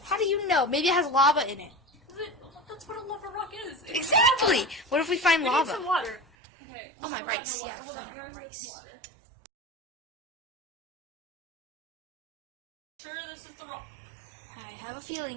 How do you know? Maybe it has lava in it. That's what a lava rock is. It's Exactly. lava. What if we find We need lava? some water. Okay. Oh, my hold on, rice. hold on, Yeah, I hold on, forgot my here's rice. some water. Sure, this is the rock. I have a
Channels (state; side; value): drops out; left; at 6.2 s